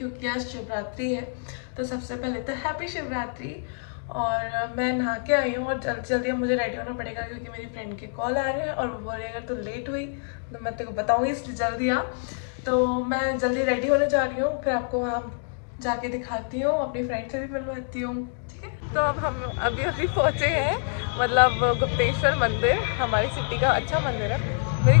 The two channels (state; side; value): silent; right; digital silence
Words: आज शिवरात्रि है। तो सबसे पहले तो हैप्पी शिवरात्रि। और मैं नहा के आई हूँ और जल्दी जल्दी अब मुझे रेडी होना पड़ेगा क्योंकि मेरी फ्रेंड के कॉल आ रहे हैं और वो बोल रही अगर तो लेट हुई तो मैं तेरे को बताऊँगी, इसलिए जल्दी आ। तो मैं जल्दी रेडी होने जा रही हूँ, फिर आपको वहाँ जाके दिखाती हूँ, अपनी फ्रेंड से भी मिलवाती हूँ, ठीक है। तो अब हम अभी पहुँचे हैं, मतलब गुप्तेश्वर मंदिर हमारी सिटी का अच्छा मंदिर है। मेरी